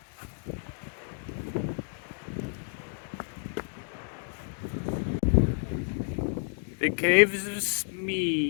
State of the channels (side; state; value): right; silent; digital silence